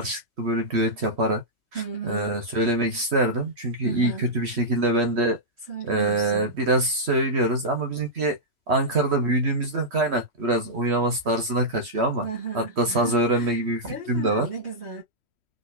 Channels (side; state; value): left; late; 3.1 ms